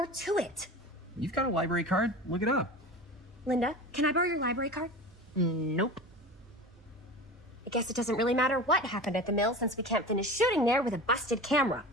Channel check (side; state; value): both; normal; correlation 0.33